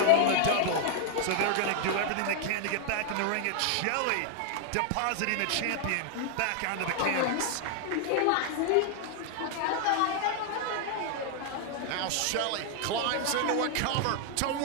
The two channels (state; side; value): different; both; correlation 0.00